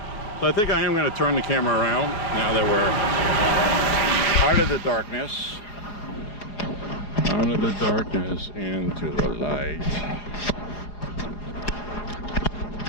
So I think I am going to turn the camera around now that we're out of the darkness. Out of the darkness into the light.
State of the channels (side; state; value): right; late; 4.8 ms